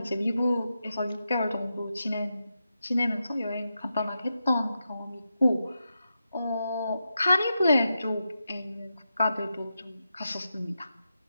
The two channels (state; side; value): inverted; both; correlation -0.88